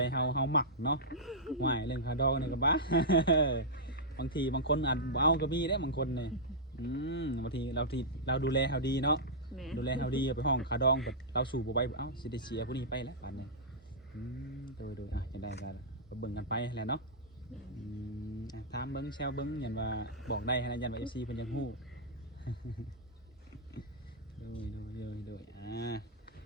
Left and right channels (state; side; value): normal; both; correlation -0.11